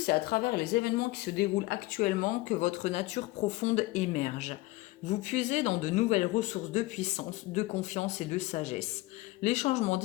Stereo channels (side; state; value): right; quieter; 19.7 dB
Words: à travers les événements qui se déroulent actuellement que votre nature profonde émerge. Vous puisez dans de nouvelles ressources de puissance, de confiance et de sagesse. Les changements